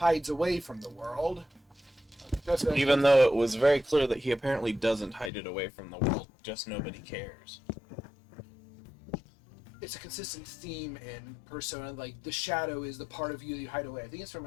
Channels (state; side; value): drops out; right; at 5.3 s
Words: away from the world. Even though it was very clear that he apparently doesn't hide it away from the world, just nobody cares. It's a consistent theme in Persona, like, the shadow is the part of you that you hide away. I think it's from,